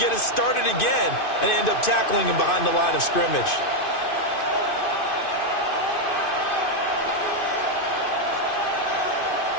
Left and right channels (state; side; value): late; right; 2.5 ms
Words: it started again and end up tackling him behind the line of scrimmage.